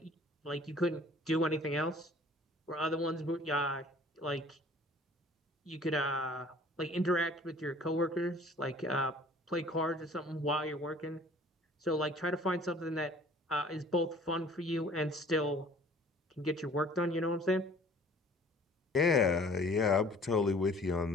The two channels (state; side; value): normal; both; correlation 0.51